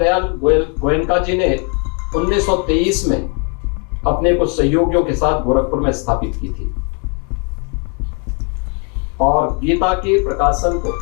गोयनका जी ने 1923 में अपने कुछ सहयोगियों के साथ गोरखपुर में स्थापित की थी और गीता के प्रकाशन को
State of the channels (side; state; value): right; quieter; 37.6 dB